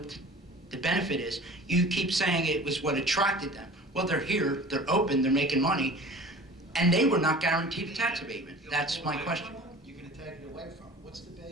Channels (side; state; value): both; normal; correlation 0.42